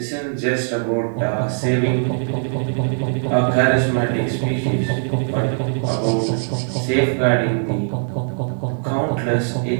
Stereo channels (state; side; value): silent; left; digital silence